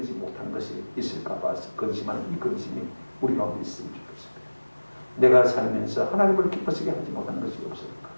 못한 것이 있을까 봐서 근심하는 이 근심이 우리 가운데 있으면 좋겠습니다. 내가 살면서 하나님을 기쁘시게 하지 못한 것이 없을까?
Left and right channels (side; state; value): both; inverted; correlation -1.00